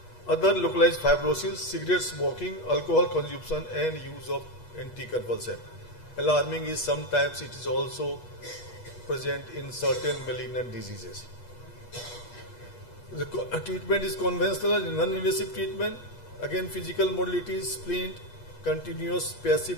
other localized fibrosis, cigarette smoking, alcohol consumption and use of anticonvulsant. Alarming is sometimes it is also present in certain malignant diseases. The treatment is conventional and non-invasive treatment. Again, physical modalities, splint, continuous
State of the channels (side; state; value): right; late; 8.3 ms